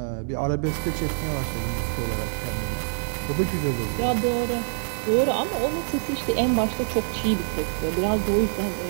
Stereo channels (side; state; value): left; silent; digital silence